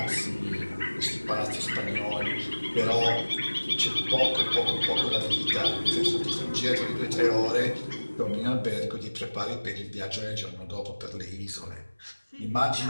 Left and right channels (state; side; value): inverted; both; correlation -1.00